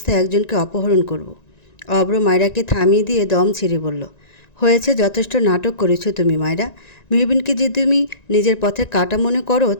একজনকে অপহরণ করব। অব্র মায়রাকে থামিয়ে দিয়ে দম ছেড়ে বলল, হয়েছে, যথেষ্ট নাটক করেছো তুমি মায়রা। মেহবিনকে যে তুমি নিজের পথে কাটা মনে করো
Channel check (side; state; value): right; late; 1.9 ms